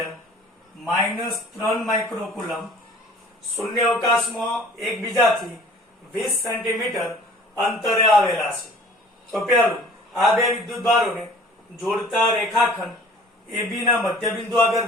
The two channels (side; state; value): both; normal; correlation 0.48